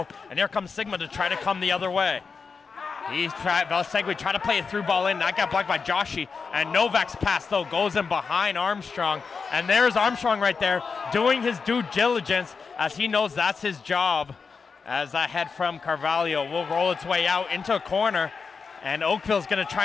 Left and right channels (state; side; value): quieter; right; 5.2 dB